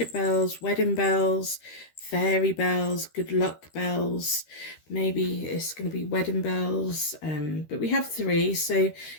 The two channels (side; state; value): right; late; 13 ms